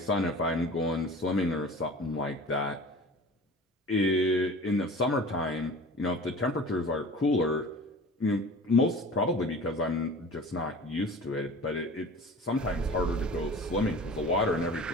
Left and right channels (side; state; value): both; normal; correlation 0.40